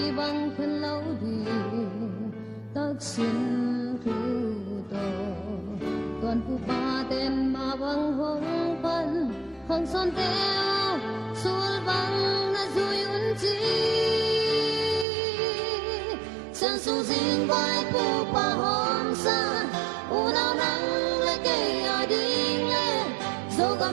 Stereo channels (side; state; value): left; drops out; at 15.1 s